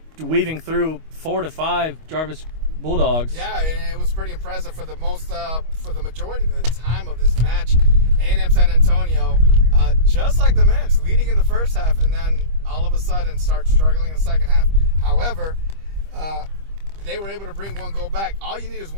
weaving through 4 to 5 Jarvis Bulldogs. Yeah, and it was pretty impressive for the majority of the time of this match. A&M San Antonio, just like the men's, leading in the first half, and then all of a sudden start struggling in the second half. However, they were able to bring 1 goal back. All you need is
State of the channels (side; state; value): left; late; 25 ms